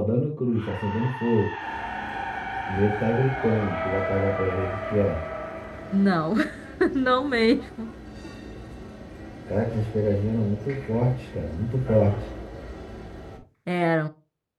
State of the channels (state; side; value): identical; both; correlation 1.00